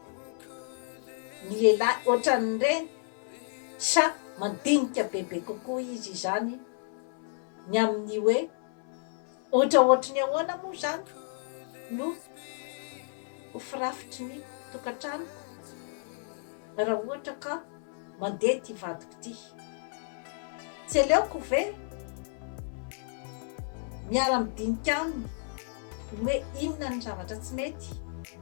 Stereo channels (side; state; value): right; silent; 57 dB below the other